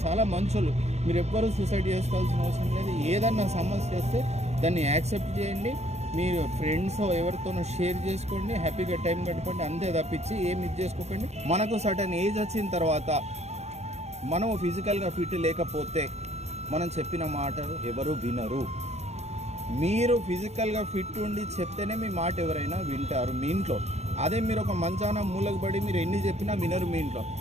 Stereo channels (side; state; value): left; late; 0.32 ms